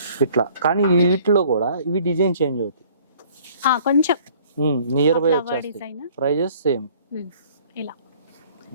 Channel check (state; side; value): inverted; both; correlation -0.55